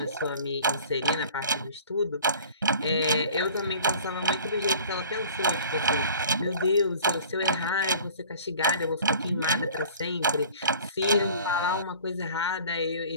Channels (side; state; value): both; inverted; correlation -0.47